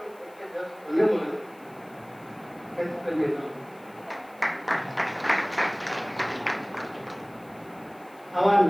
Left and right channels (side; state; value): left; noise; hiss, 28 dB below the sound